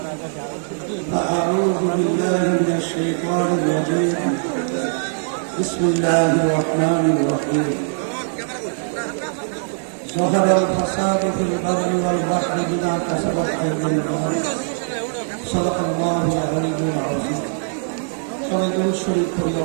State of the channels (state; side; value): silent; left; 65 dB below the other